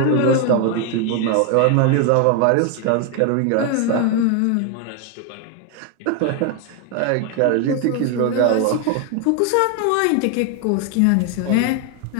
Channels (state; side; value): different; both; correlation 0.01